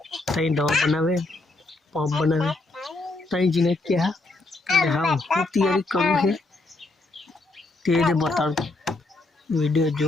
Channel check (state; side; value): quieter; right; 3.1 dB